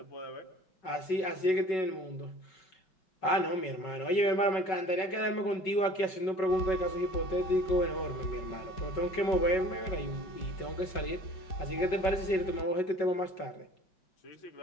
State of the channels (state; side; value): late; right; 5.3 ms